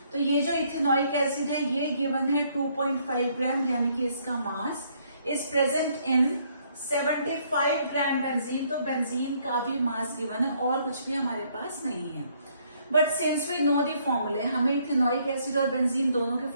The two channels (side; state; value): both; inverted; correlation -0.68